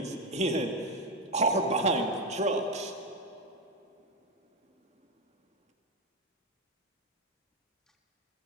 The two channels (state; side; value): normal; both; correlation 0.08